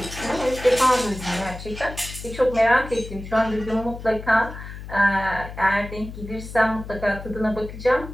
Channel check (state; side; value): noise; left; hum, 12 dB below the sound